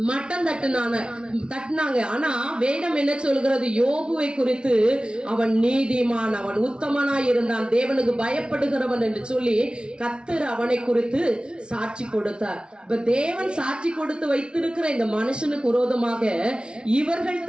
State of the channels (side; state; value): left; late; 0.055 ms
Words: மட்டம் தட்டினாங்க. ஆனா வேதம் என்ன சொல்கிறது, யோபுவை குறித்து அவன் நீதிமான், அவன் உத்தமனாய் இருந்தான், தேவனுக்கு பயப்படுகிறவன் என்று சொல்லி கர்த்தர் அவனை குறித்து சாட்சி கொடுத்தார். இப்ப தேவன் சாட்சி கொடுத்து வைத்திருக்கிற இந்த மனுஷனுக்கு விரோதமாக இவர்கள்